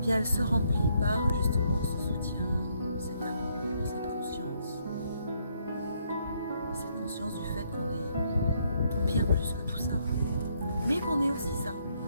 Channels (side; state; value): both; inverted; correlation -0.72